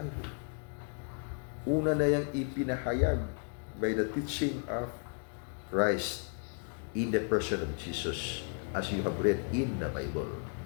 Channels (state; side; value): quieter; right; 39.2 dB